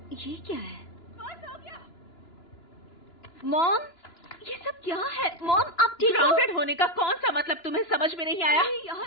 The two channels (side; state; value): right; late; 2.9 ms